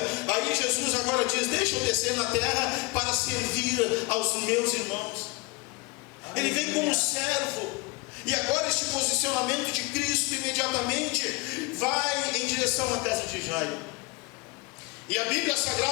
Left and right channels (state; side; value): quieter; right; 26.2 dB